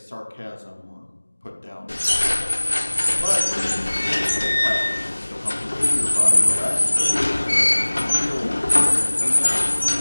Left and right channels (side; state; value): both; inverted; correlation -1.00